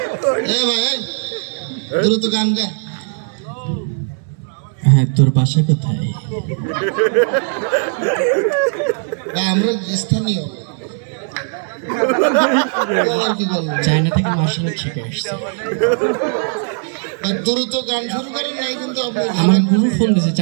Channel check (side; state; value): left; silent; 56 dB below the other